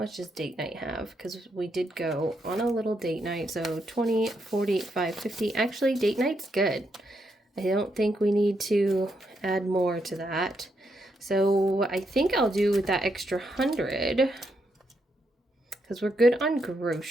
much does date night have? Because we did go on a little date night. So 20, 45, 50. Actually, date night's good. I don't think we need to add more to that. So I think I'll do with that extra 100, because we're good on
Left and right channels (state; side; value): normal; both; correlation 0.80